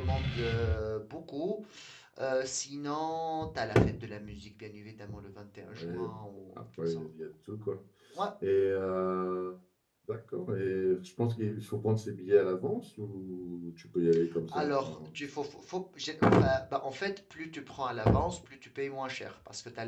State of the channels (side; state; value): both; identical; correlation 1.00